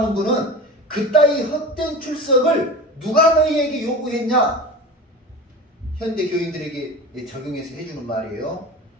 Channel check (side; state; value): both; normal; correlation 0.31